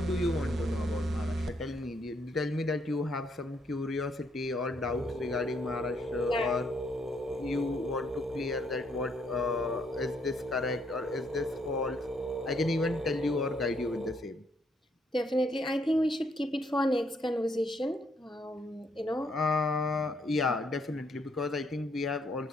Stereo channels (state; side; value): normal; both; correlation 0.72